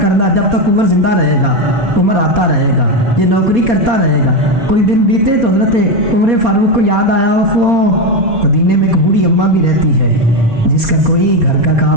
کرنا، جب تک عمر زندہ رہے گا، عمر آتا رہے گا، یہ نوکری کرتا رہے گا۔ کوئی دن بیتے تو حضرت عمر فاروق کو یاد آیا، مدینے میں ایک بوڑھی اماں بھی رہتی ہے جس کا کوئی گھر کا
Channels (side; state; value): left; late; 4.3 ms